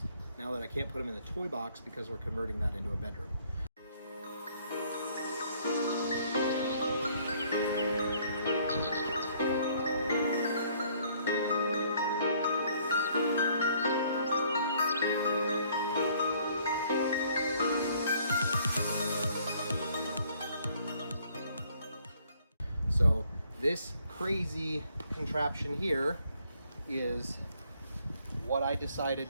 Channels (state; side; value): inverted; both; correlation -0.63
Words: now that I can't put them in the toy box because we're converting that into a bedroom. So this crazy contraption here is what I